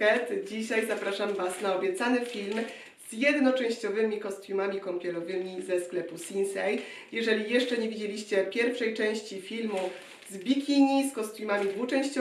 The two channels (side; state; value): both; identical; correlation 1.00